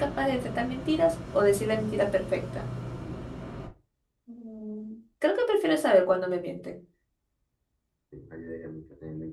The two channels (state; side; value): identical; both; correlation 1.00